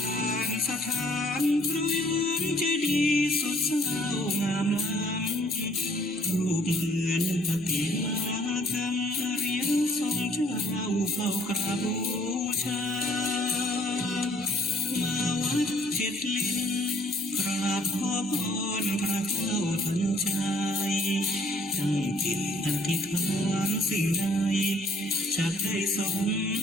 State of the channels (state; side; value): normal; both; correlation 0.60